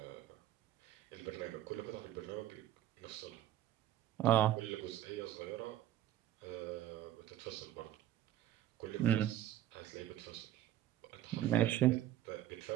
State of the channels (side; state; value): left; quieter; 12.8 dB